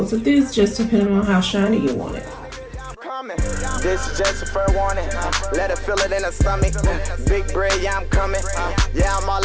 of this, just depending on how shiny you want it. This is just a fair warning. Let her feel it in her stomach. Big bread, yeah, I'm coming. Yeah, I'm all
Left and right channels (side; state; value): both; identical; correlation 1.00